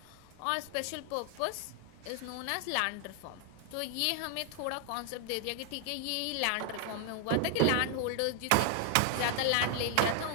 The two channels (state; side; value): different; both; correlation 0.00